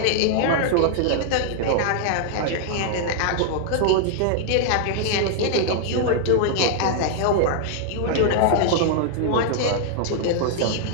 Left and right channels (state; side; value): different; both; correlation -0.01